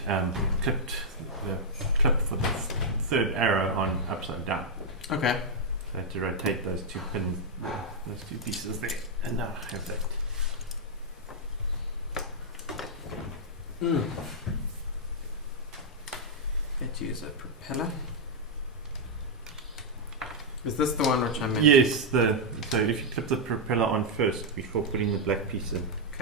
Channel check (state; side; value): normal; both; correlation -0.03